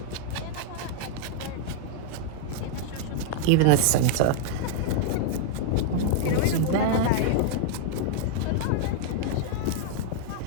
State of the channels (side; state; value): both; different; correlation -0.01